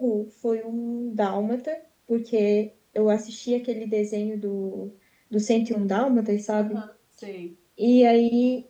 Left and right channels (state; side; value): identical; both; correlation 1.00